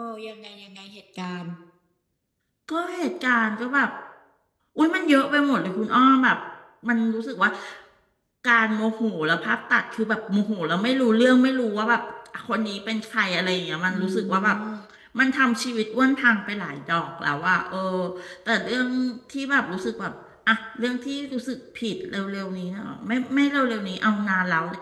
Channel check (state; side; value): identical; both; correlation 1.00